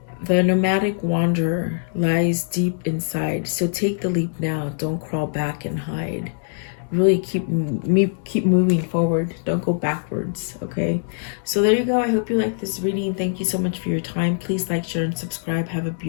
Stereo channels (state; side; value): silent; right; digital silence